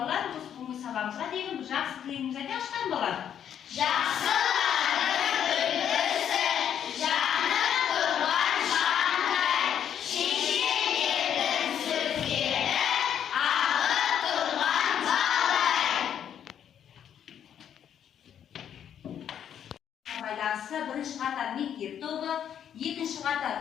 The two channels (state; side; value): quieter; right; 9.2 dB